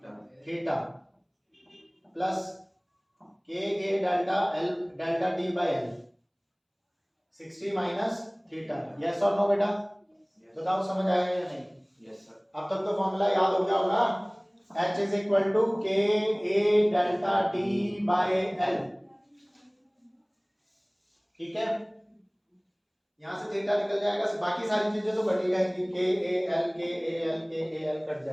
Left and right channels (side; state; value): both; identical; correlation 1.00